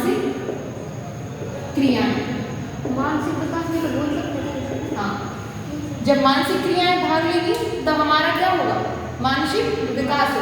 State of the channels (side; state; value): both; identical; correlation 1.00